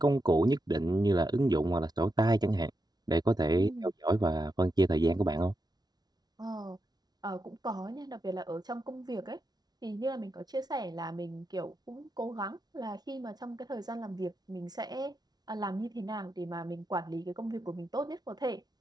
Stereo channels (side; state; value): left; late; 0.19 ms